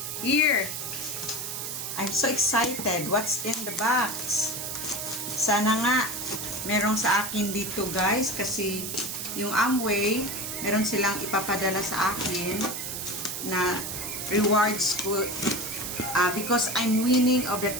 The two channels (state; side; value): noise; right; hiss, 5 dB below the sound